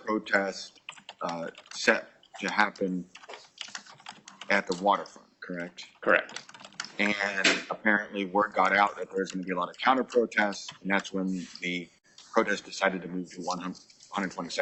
set to happen at the waterfront, correct? Correct. And apparently word got out that there's going to be a lot of counter protests, and that's when the protest decided to move to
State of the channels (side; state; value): both; identical; correlation 1.00